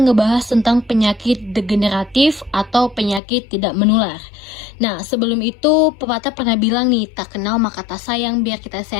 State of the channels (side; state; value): right; drops out; at 3.2 s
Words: ngebahas tentang penyakit degeneratif atau penyakit tidak menular. Nah, sebelum itu pepatah pernah bilang nih, tak kenal maka tak sayang, biar kita